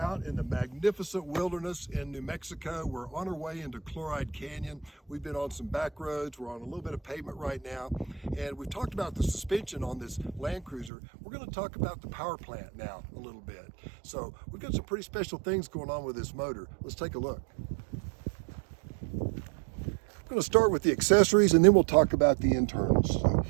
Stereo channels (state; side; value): drops out; left; at 10.9 s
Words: in the magnificent wilderness in New Mexico. We're on our way into Chloride Canyon. We've been on some back roads. We're on a little bit of pavement right now. And we've talked about the suspension on this Land Cruiser. We're going to talk about the power plant now a little bit. So we've got some pretty special things going on with this motor. Let's take a look. I'm going to start with the accessories and then we'll talk about the internals. So,